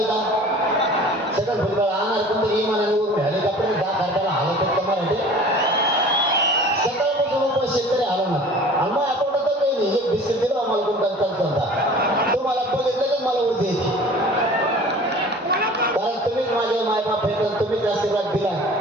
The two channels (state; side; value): normal; both; correlation 0.44